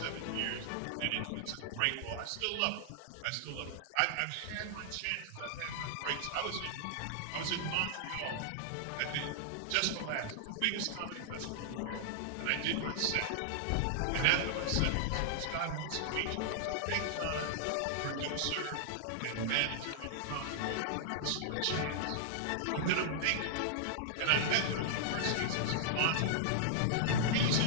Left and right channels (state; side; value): different; both; correlation -0.01